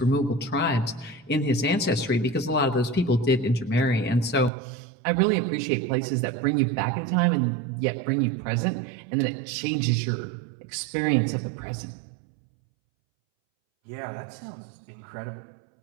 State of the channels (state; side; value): drops out; left; at 4.5 s